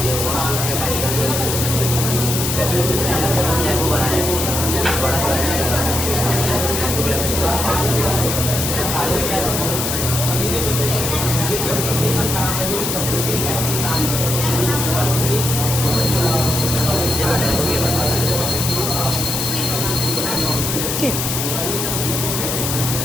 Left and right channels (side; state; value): left; noise; hiss, 1 dB below the sound